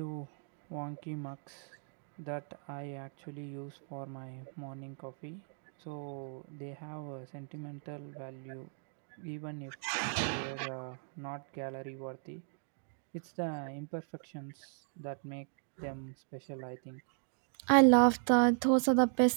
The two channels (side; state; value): left; silent; digital silence